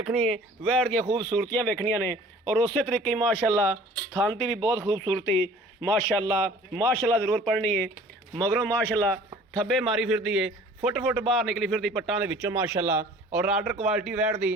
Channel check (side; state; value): both; normal; correlation 0.49